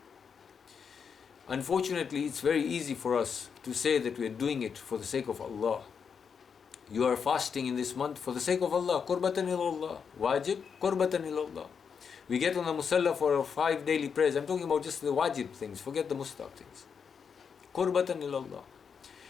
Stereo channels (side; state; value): right; quieter; 6.5 dB